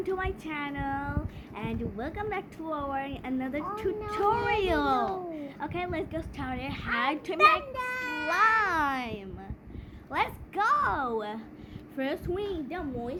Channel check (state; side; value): identical; both; correlation 1.00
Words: to my channel and welcome back to our another tutorial. Okay, let's get started. How to make slime. Let's go. First we need the